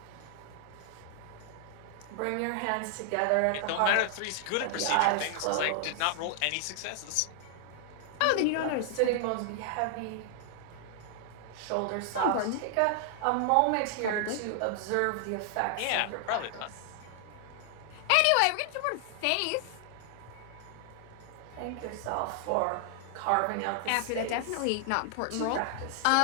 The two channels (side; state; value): both; different; correlation 0.00